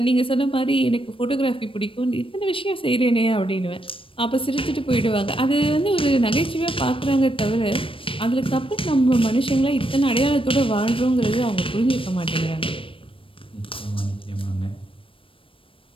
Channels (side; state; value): right; late; 0.26 ms